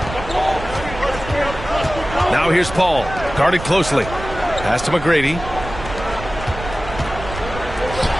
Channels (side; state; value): right; noise; rumble, 11 dB below the sound